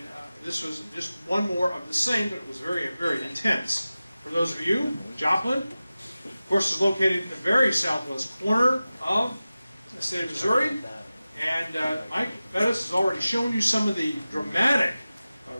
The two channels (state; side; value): inverted; both; correlation -0.96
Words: this was just one more of the same, but it was very, very intense. For those of you, Joplin, of course, is located in the very southwest corner of the state of Missouri, and Mike Bettis has already shown you some of the dramatic